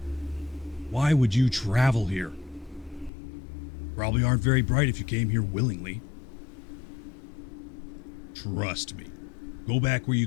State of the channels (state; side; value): drops out; right; at 3.1 s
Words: Why would you travel here? Probably aren't very bright if you came here willingly. Trust me. Go back where you